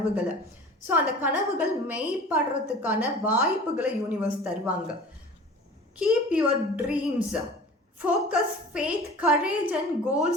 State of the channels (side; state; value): both; normal; correlation 0.41